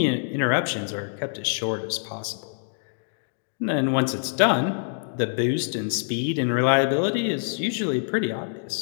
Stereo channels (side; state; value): right; silent; digital silence